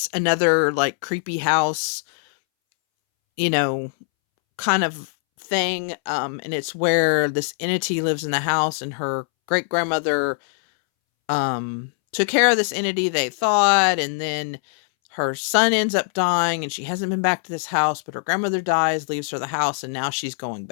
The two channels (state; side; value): silent; right; 64 dB below the other